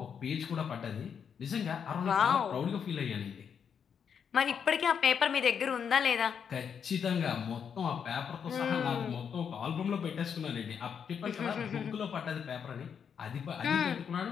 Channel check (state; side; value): quieter; right; 7.3 dB